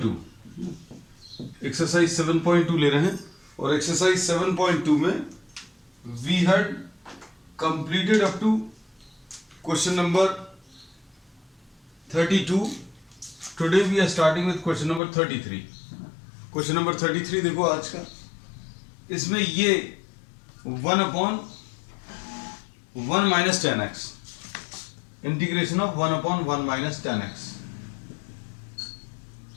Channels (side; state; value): right; drops out; at 15.0 s